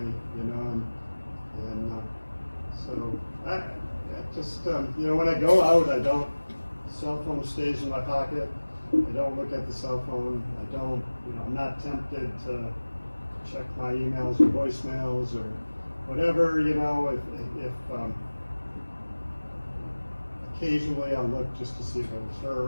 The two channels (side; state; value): both; inverted; correlation -1.00